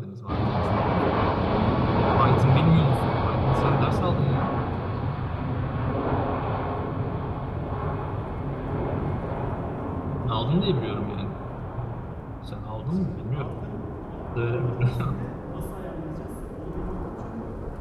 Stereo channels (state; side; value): identical; both; correlation 1.00